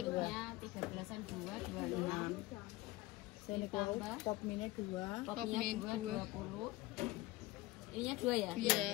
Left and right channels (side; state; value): right; quieter; 18.5 dB